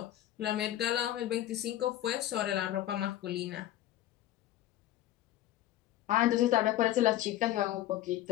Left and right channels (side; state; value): right; quieter; 13.5 dB